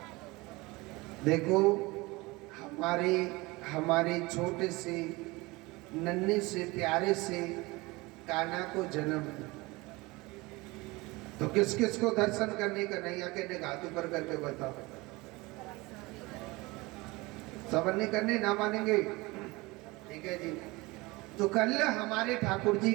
देखो हमारे छोटे से नन्हे से प्यारे से कान्हा को जन्म, तो किस किस को दर्शन करने का नहीं आके हाथ ऊपर करके बताओ। सब नहीं करने ना मानेंगे, ठीक है जी। तो कल हमारे ठाकुर जी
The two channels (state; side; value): quieter; left; 23.0 dB